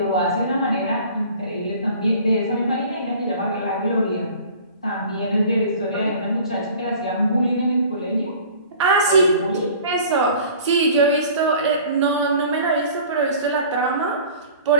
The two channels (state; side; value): inverted; both; correlation -0.46